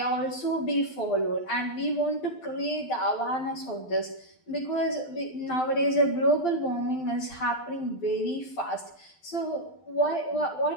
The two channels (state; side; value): late; right; 12 ms